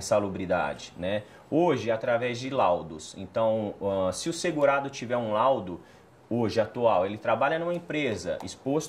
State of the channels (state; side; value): identical; both; correlation 1.00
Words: né? Hoje, através de laudos. Então, se o segurado tiver um laudo, hoje, atual, ele trabalha numa empresa